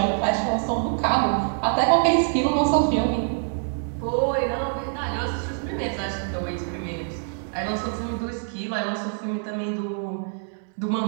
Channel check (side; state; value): left; silent; 60 dB below the other